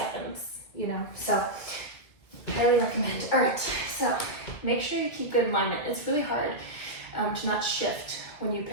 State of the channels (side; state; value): right; late; 2.3 ms